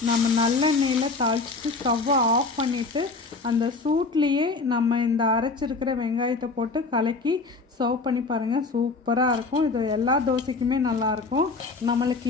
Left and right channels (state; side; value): quieter; right; 3.8 dB